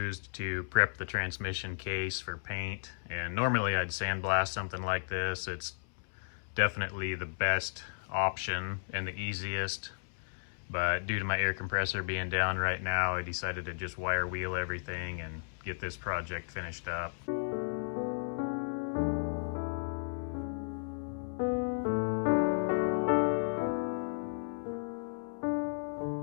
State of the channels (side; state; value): right; silent; 55 dB below the other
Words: to prep the transmission case for paint, and normally I'd sandblast something like this. It's definitely the best option and the easiest, but due to my air compressor being down right now, I decided to just wire wheel everything and get this project finished up.